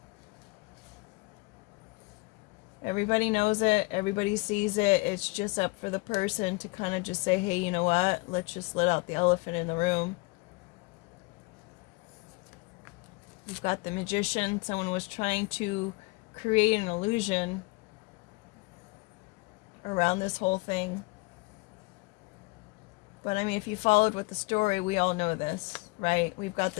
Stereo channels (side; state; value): right; quieter; 26.1 dB